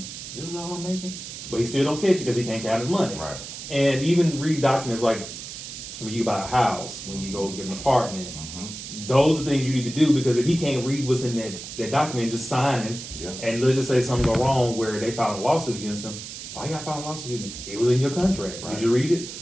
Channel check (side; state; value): right; noise; hiss, 10 dB below the sound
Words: this is all I'm making? But he still don't catch it because he can't count his money. Right. And even read documents like when you buy a house, when you go get an apartment, Mm-hmm. those are things you need to do because if he can't read what's in that document, just signing, Yeah. and let's just say something go wrong where they filed a lawsuit against him, why you gotta file a lawsuit against me? It was in your contract. Right. Did you read it?